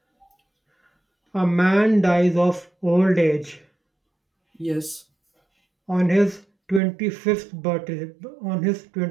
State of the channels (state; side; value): drops out; left; at 6.8 s